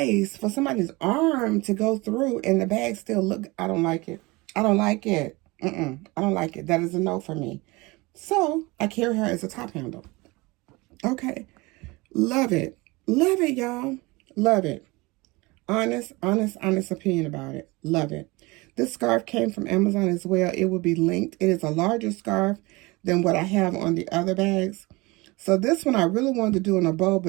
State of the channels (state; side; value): quieter; left; 23.6 dB